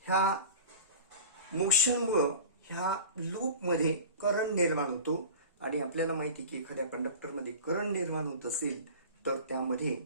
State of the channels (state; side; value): inverted; both; correlation -0.36